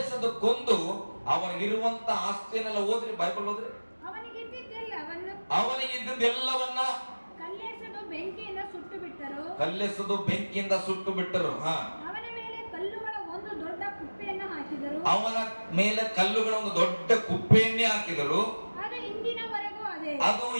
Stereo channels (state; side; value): inverted; both; correlation -1.00